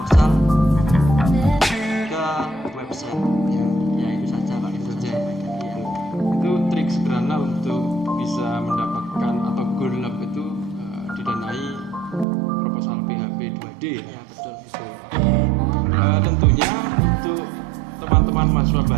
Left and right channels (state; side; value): drops out; left; at 12.2 s